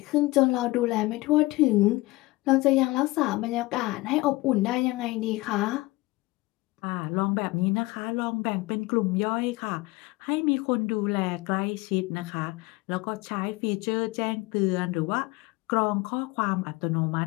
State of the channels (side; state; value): right; quieter; 21.1 dB